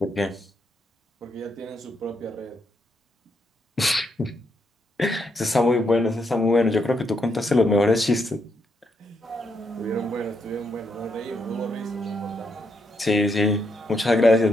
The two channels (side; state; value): both; normal; correlation 0.79